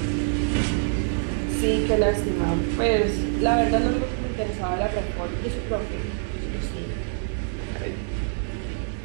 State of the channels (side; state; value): left; silent; digital silence